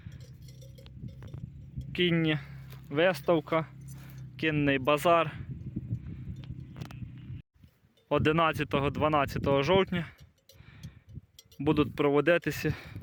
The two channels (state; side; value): identical; both; correlation 1.00